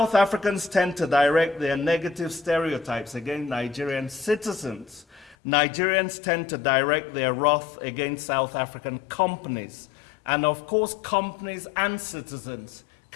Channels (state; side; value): drops out; right; at 5.4 s